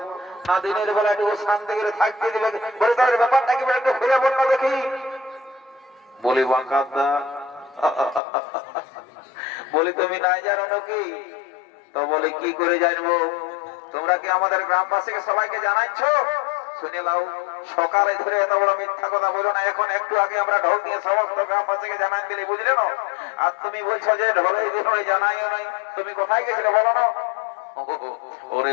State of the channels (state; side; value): drops out; right; at 8.2 s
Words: না দিনের বেলা একটু শান্তি করে থাকতে দেবে। বলে তাদের ব্যাপারটা কি একটু ফিরে বল না দেখি। বলি বাঁকাদা, বলি তুমি নাই জানো নাকি? তো বলে কি করে জানবো? তোমরা কি আমাদের গ্রামবাসীকে সবাইকে জানাচ্ছ? শুনে লাও, সকালে ধরে এত বড় মিথ্যা কথা বলো না। এখন একটু আগে আমরা ঢোল দিয়ে সমস্ত গ্রামবাসীকে জানাই দিলে, বুঝলে না? আর তুমি বলছো যে ঢোলে দিয়ে জানাইও নাই। তুমি কোথায় গেছিলে বলো না? ওরে